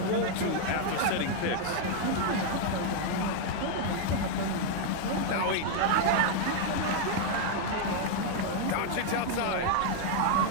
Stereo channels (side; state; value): both; different; correlation 0.00